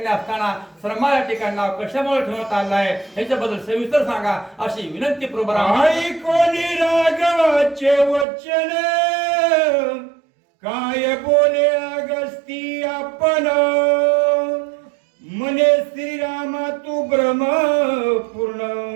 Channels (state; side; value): drops out; left; at 8.2 s